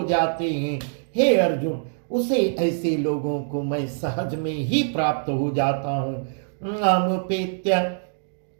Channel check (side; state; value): left; silent; digital silence